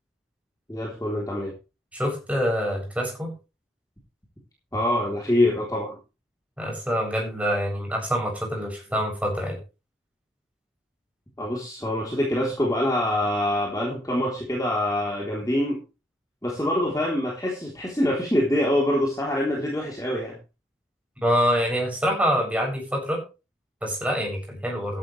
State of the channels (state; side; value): normal; both; correlation 0.70